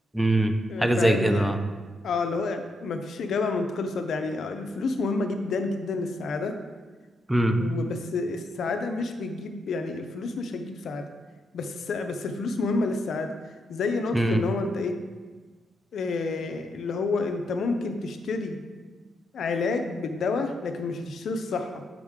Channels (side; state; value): both; normal; correlation 0.80